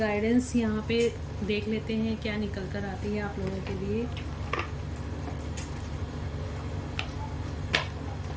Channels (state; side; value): identical; both; correlation 1.00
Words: यहाँ पे देख लेते हैं क्या निकल कर आती है आप लोगों के लिए।